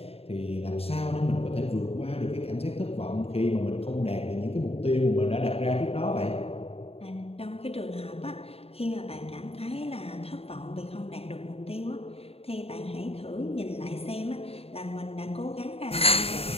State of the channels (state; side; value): late; right; 0.29 ms